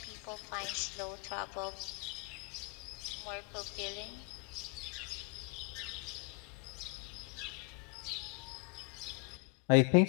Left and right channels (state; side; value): quieter; right; 33.5 dB